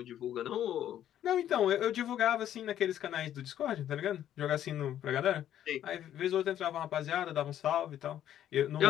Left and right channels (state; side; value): quieter; right; 11.2 dB